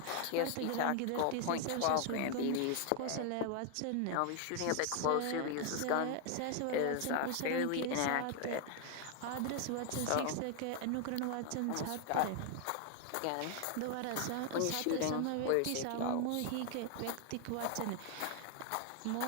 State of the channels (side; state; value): both; different; correlation 0.00